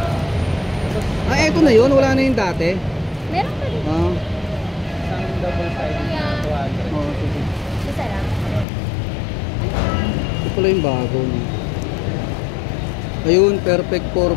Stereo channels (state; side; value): drops out; right; at 8.7 s